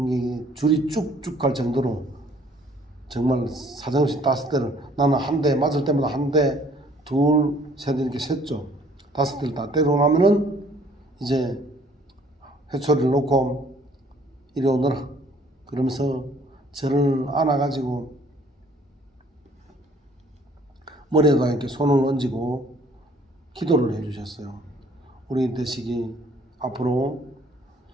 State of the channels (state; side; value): normal; both; correlation 0.58